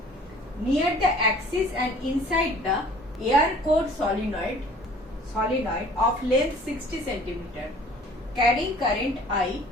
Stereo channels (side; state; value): both; normal; correlation 0.51